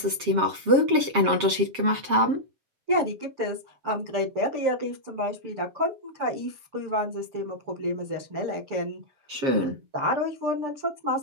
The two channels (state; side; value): late; left; 7.4 ms